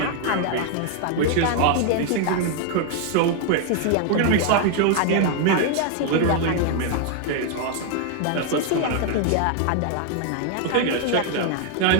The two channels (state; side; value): different; both; correlation 0.00